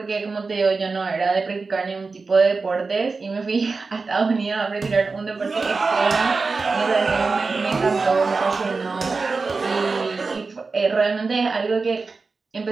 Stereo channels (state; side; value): quieter; left; 4.2 dB